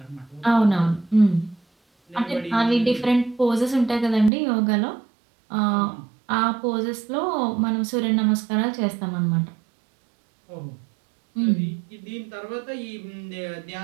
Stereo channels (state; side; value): drops out; left; at 4.3 s